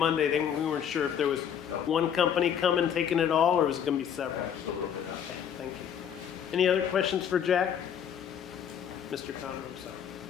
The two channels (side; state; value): right; quieter; 8.6 dB